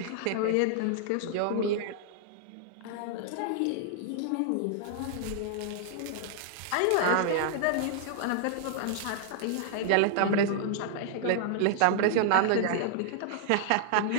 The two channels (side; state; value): both; different; correlation -0.01